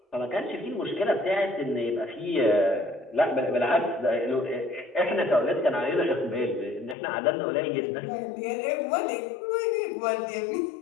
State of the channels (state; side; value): drops out; right; at 7.0 s